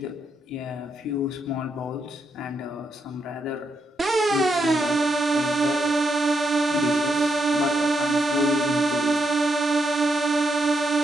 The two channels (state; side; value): normal; both; correlation 0.80